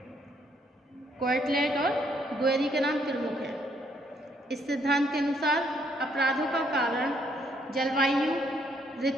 क्वार्टलेट और गुएरी के नाम प्रमुख हैं. इस सिद्धांत के अनुसार अपराधों का कारण जलवायु,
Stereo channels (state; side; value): normal; both; correlation 0.70